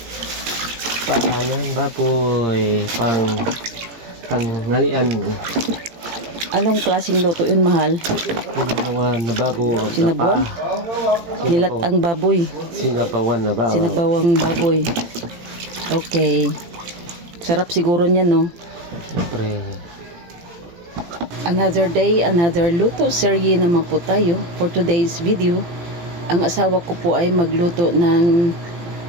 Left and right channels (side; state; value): left; late; 17 ms